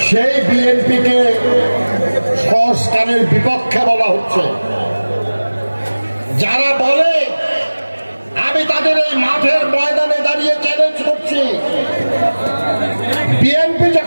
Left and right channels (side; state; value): both; inverted; correlation -1.00